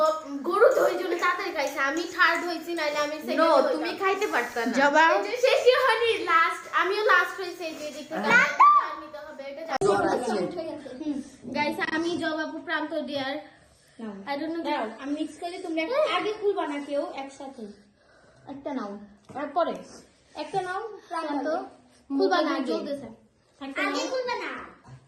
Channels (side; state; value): both; identical; correlation 1.00